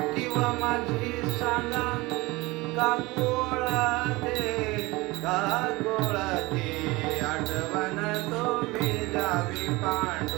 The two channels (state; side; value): quieter; left; 22.1 dB